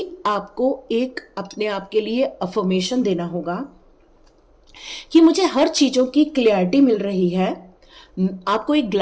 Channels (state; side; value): identical; both; correlation 1.00